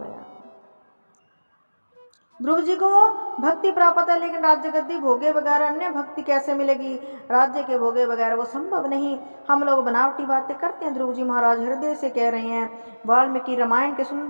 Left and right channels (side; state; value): both; inverted; correlation -1.00